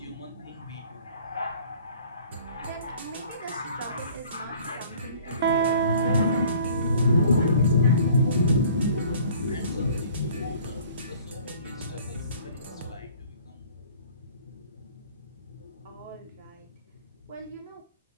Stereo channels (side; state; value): both; inverted; correlation -0.52